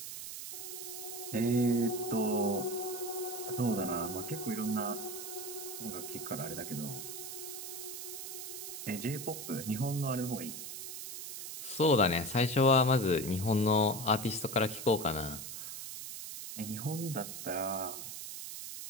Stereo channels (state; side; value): noise; right; hiss, 8 dB below the sound